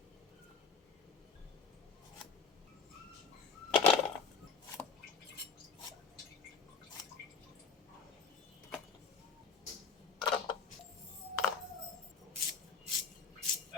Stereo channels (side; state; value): right; quieter; 5.7 dB